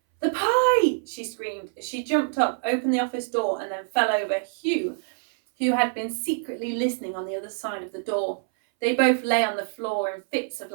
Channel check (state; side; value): silent; left; 61 dB below the other